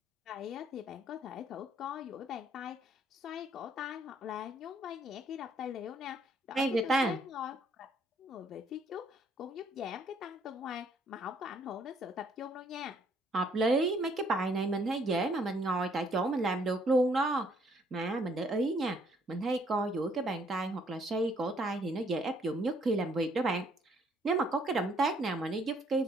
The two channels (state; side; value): normal; both; correlation 0.65